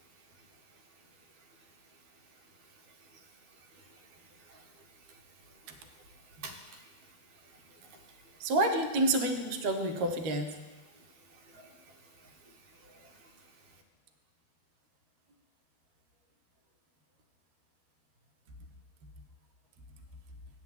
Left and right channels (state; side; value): late; left; 12 ms